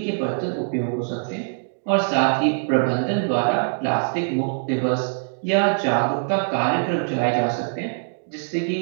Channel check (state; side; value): silent; left; digital silence